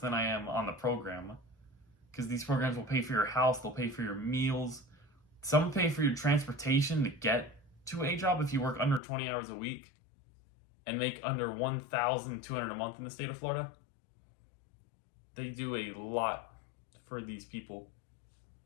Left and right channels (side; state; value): right; drops out; at 9.0 s